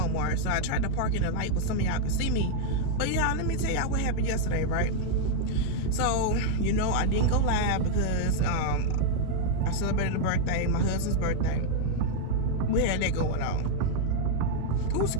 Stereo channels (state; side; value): different; both; correlation -0.01